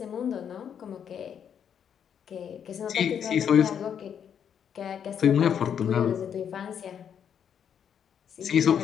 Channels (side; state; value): right; quieter; 8.3 dB